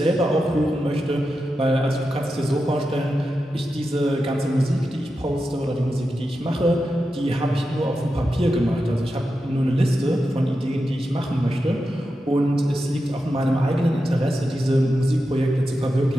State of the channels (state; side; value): normal; both; correlation 0.90